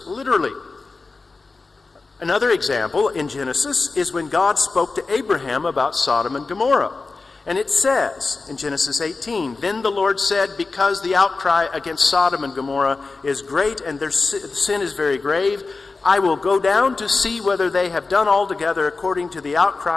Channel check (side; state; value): right; quieter; 3.9 dB